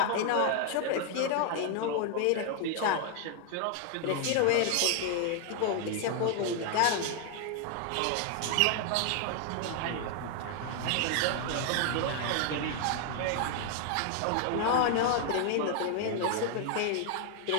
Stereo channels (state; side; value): different; both; correlation 0.00